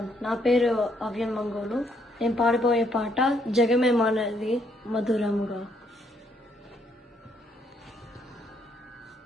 నా పేరు అవ్యన్ మంగోలు. నేను పాడిపోయే పాట జగమే మారినది మధురముగా.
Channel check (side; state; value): both; normal; correlation 0.71